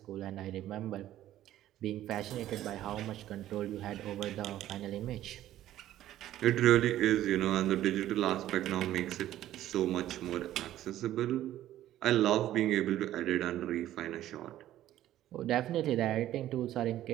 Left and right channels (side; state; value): left; quieter; 13.2 dB